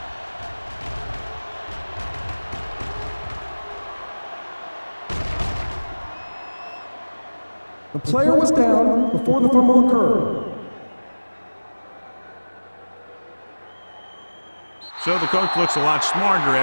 The player was down before the fumble occurred. So the coach looks a lot smarter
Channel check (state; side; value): inverted; both; correlation -1.00